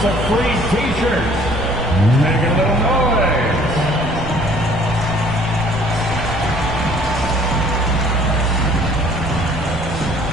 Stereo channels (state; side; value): noise; right; rumble, 10 dB below the sound